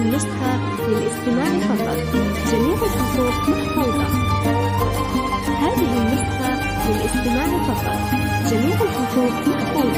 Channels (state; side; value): identical; both; correlation 1.00